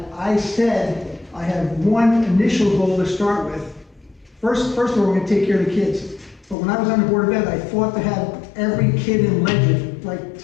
I said I have one initial goal to start with. First of all, we're going to take care of the kids. But when I was on the Board of Ed, I fought to have every kid in Legend, like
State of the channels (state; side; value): drops out; right; at 6.6 s